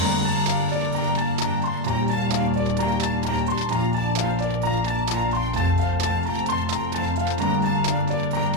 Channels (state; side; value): late; left; 36 ms